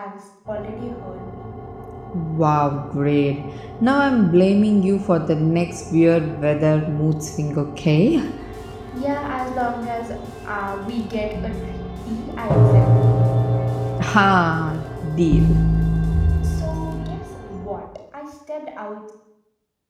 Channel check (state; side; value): identical; both; correlation 1.00